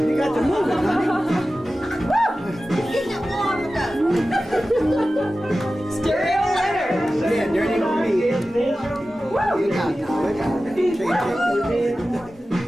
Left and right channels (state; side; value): normal; both; correlation 0.95